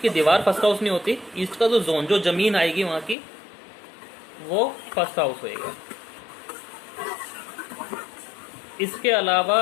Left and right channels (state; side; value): drops out; right; at 3.2 s